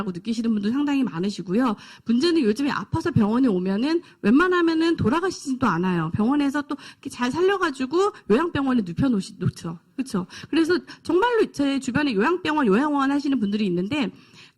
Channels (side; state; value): both; identical; correlation 1.00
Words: 느끼시는 분도 상당히 많으시고요. 문제는 요즘에 아파서 병원에 오면은 웬만하면은 돌아가시지도 않아요. 병원에서 또 이렇게 잘 살려가지고 요양병원에 놓죠. 그렇죠. 그래서 정말로 제 주변에 요양병원, 요양원 하시는 분들이 있는데